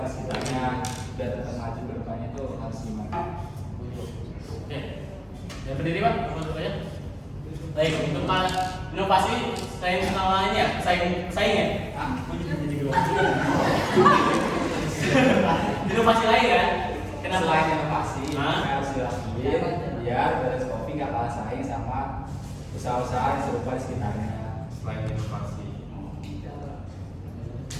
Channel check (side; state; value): both; identical; correlation 1.00